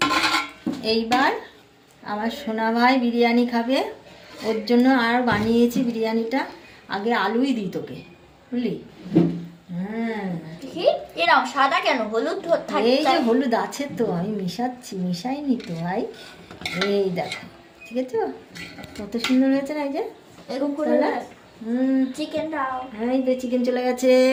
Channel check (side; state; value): both; identical; correlation 1.00